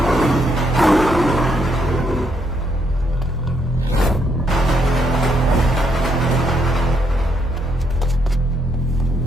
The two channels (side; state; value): both; normal; correlation 0.75